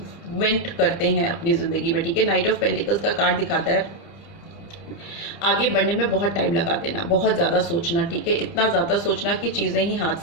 करते हैं अपनी ज़िंदगी में, ठीक है। नाइट ऑफ पेंटिकल्स का कार्ड दिखाता है आगे बढ़ने में बहुत टाइम लगा देना, बहुत ज़्यादा सोचना, ठीक है, इतना ज़्यादा सोचना कि चीज़ें ही हाथ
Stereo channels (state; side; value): late; right; 29 ms